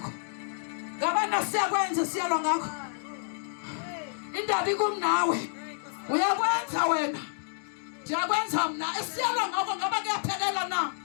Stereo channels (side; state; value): right; silent; digital silence